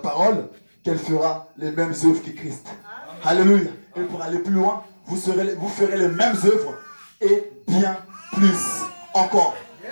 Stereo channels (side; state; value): both; inverted; correlation -1.00